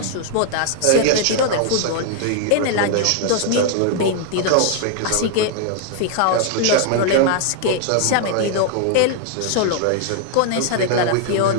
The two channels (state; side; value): different; both; correlation 0.00